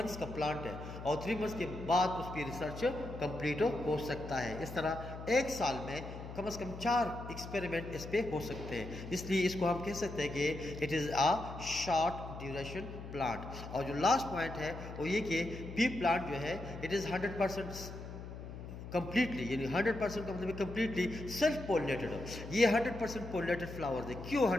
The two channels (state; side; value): noise; left; hum, 10 dB below the sound